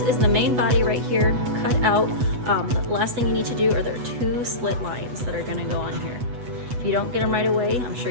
the main body right here, cut out. The last thing you need to do are there are 2 slit lines that are gonna go on here. If you don't get them right away, I'm sure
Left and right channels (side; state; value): left; late; 8.2 ms